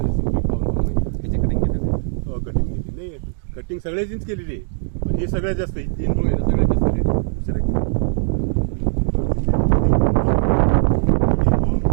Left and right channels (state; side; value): silent; left; digital silence